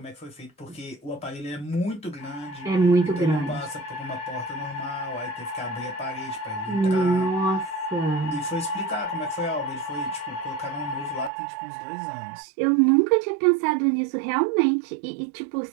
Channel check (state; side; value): drops out; left; at 11.3 s